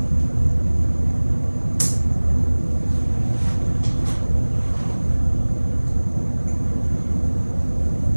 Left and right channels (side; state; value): both; inverted; correlation -1.00